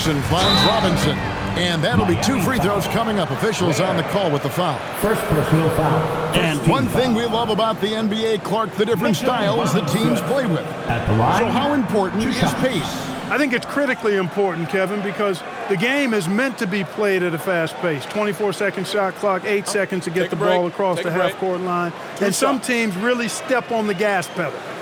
finds Robinson. And that'll be 2 free throws coming up. Officials on the call with the foul. First personal foul. And one thing we love about the NBA, Clark, the different styles the teams play with. At the line. So how important is pace? I think it's critically important, Kevin, because the game is meant to be played at a fast pace. 24-second shot clock, 8 seconds to get the ball across the half-court line. And some teams really step on the gas pedal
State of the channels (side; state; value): both; identical; correlation 1.00